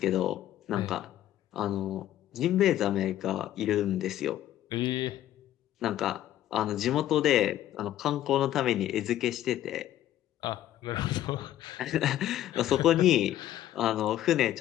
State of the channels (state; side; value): quieter; right; 12.8 dB